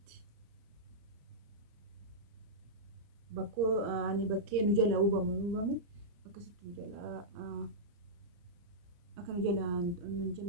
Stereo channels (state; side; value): late; left; 34 ms